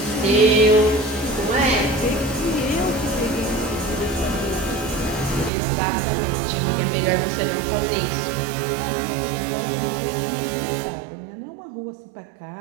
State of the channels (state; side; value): drops out; left; at 5.5 s